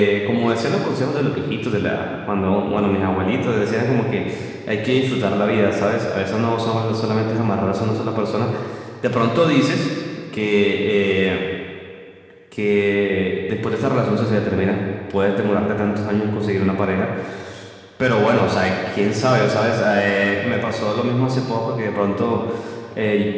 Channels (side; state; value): both; identical; correlation 1.00